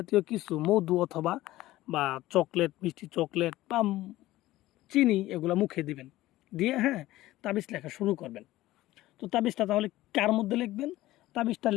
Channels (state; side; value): quieter; right; 16.4 dB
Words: কিছু মধু অথবা বা চকলেট, মিষ্টি চকলেট বা চিনি এগুলো মুখে দিবেন, দিয়ে তাবিজ লেখা শুরু করবেন। তো তাবিজটা তাহলে কার মধ্যে লিখবেন? তাবিজটা